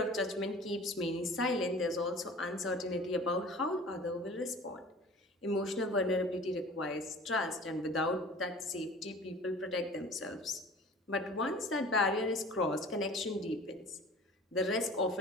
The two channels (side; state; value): both; normal; correlation 0.43